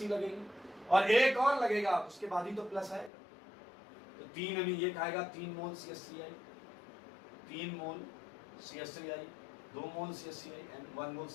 लगेंगे और एक और लगेगा, उसके बाद ही तो प्लस आएगा। तो 3 अमीन ये खाएगा, 3 मोल CH3I, 3 mole CH3I, 2 mole CH3I and 1 mole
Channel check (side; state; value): right; drops out; at 3.1 s